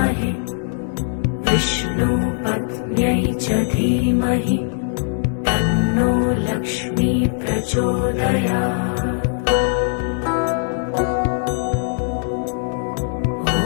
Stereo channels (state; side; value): silent; right; digital silence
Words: विष्णुपत्न्यै च धीमहि तन्नो लक्ष्मी प्रचोदयात्।